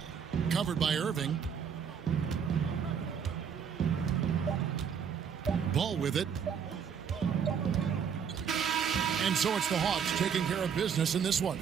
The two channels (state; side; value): quieter; left; 7.3 dB